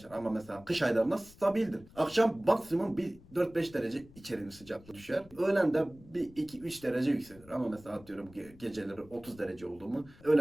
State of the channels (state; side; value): noise; left; rumble, 23 dB below the sound